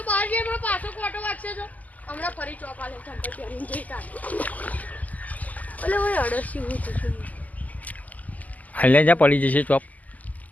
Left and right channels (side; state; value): right; late; 0.078 ms